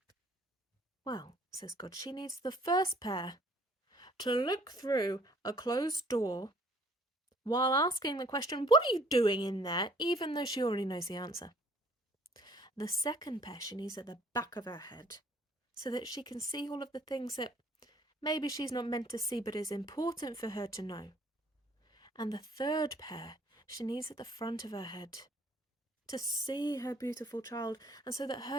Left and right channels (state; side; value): normal; both; correlation 0.58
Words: "Well," says God, "she needs the first pair to look through a closed door while asking the question, 'What are you doing in there?' even though she already knows the answer. The second pair she needs at the back of her head so that she can see all of the things that maybe she's not meant to see but is important for her to know. And the third pair she needs at the front of her head to see her beautiful child and so that